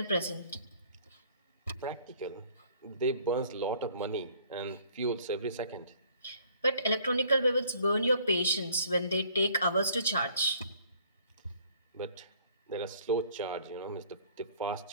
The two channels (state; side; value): inverted; both; correlation -0.58